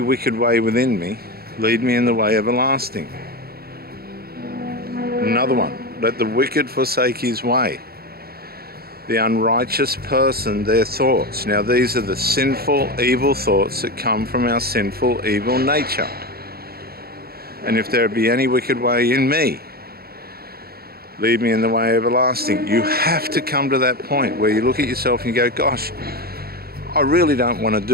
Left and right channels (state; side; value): late; left; 0.45 ms